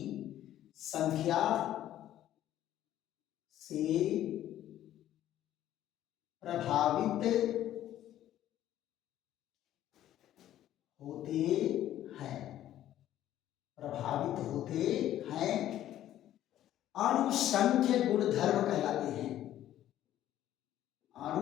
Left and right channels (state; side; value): quieter; right; 12.5 dB